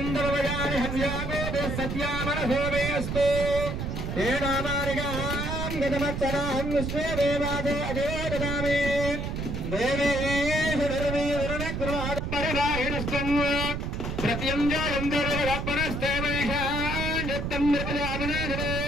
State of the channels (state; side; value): noise; right; rumble, 3 dB below the sound